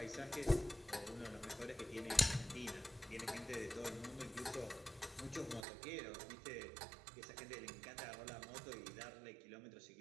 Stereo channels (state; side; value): drops out; left; at 5.7 s